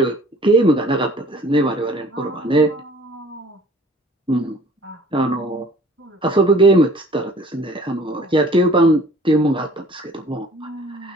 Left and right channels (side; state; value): both; normal; correlation 0.51